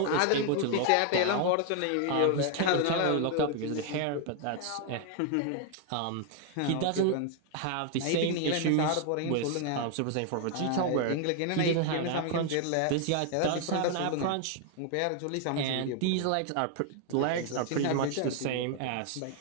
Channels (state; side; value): different; both; correlation 0.00